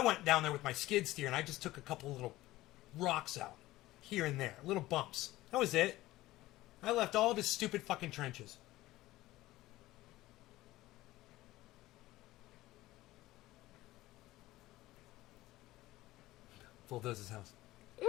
went down there with my skid steer and I just took a couple little rocks out here and there, little bumps. That was it. I left all of his stupid fucking trenches. Bulldoze his house.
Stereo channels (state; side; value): quieter; right; 17.1 dB